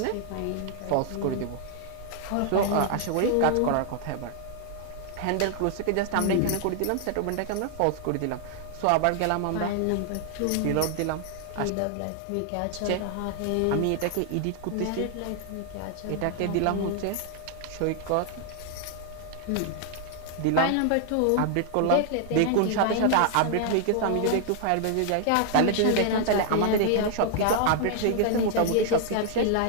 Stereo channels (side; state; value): both; different; correlation 0.00